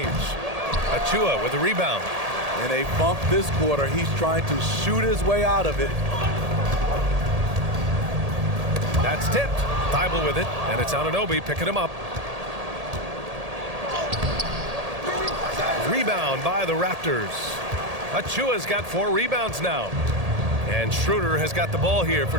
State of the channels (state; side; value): late; left; 1.8 ms